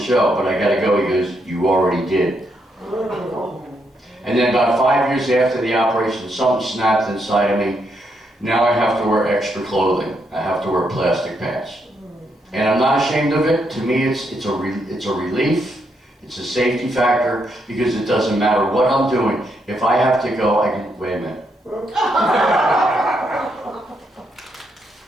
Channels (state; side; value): normal; both; correlation 0.78